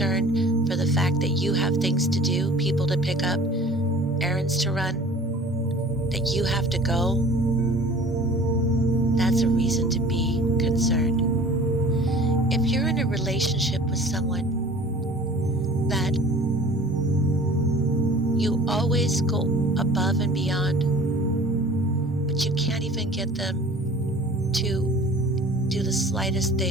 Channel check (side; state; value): both; normal; correlation 0.46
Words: for the fact that you have things to do, people to pick up, errands to run, that you have to go, that's a reason to be concerned. If you're in a relationship with someone that you always go above and beyond, but you can't even get them to do the slightest